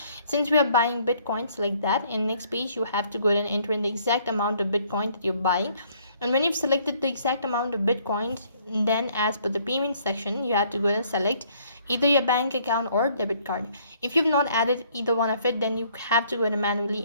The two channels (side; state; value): both; inverted; correlation -0.63